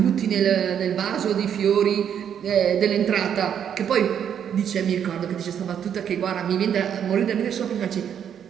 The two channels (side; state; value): left; quieter; 8.7 dB